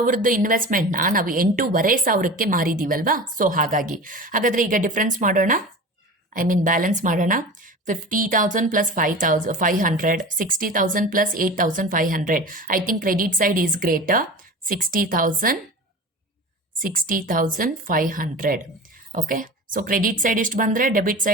ಇನ್ವೆಸ್ಟ್ಮೆಂಟ್ನ ನಾವು 8,500ಕ್ಕೆ ಮಾರಿದ್ದೀವಲ್ವಾ? ಸೊ ಹಾಗಾದರೆ ಈಗ ಡಿಫ್ರೆನ್ಸ್ ಮಾಡೋಣ, ಬ್ಯಾಲೆನ್ಸ್ ಮಾಡೋಣ. 50,000 plus 5,500, 60,000 plus 8,500. I think credit side is greater. 60,500. Okay. So credit side ಇಷ್ಟು ಬಂದರೆ ಡೆಬಿಟ್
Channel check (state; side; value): normal; both; correlation 0.33